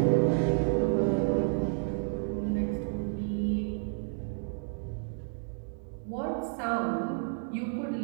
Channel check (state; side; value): silent; left; digital silence